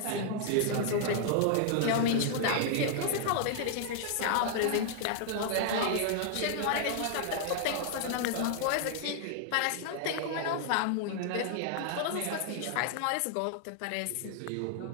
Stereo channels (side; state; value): both; different; correlation -0.01